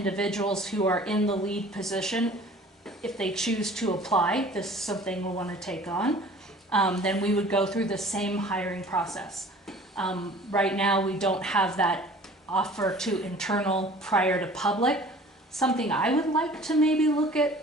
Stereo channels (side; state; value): both; normal; correlation 0.47